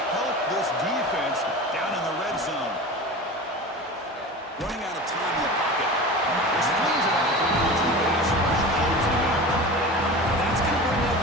help this defense down in the red zone. Running out of time in the pocket. This flings it out. That's going to bring up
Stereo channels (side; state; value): both; normal; correlation 0.33